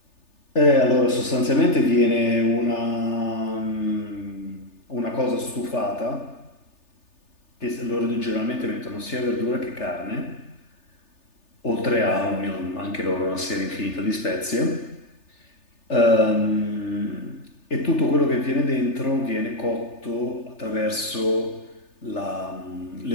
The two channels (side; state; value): right; late; 3.4 ms